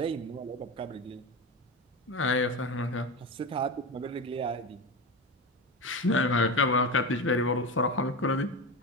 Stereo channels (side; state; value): both; normal; correlation 0.22